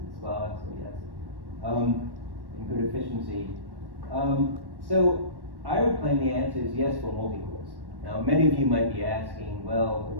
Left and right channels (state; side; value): late; left; 1.1 ms